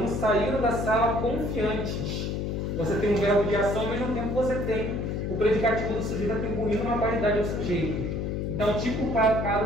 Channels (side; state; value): left; noise; hum, 2 dB below the sound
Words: saíram da sala confiantes. Você tem um verbo de ação, ao mesmo tempo você tem o predicativo do sujeito atribuindo uma qualidade ao sujeito. Então, tipo o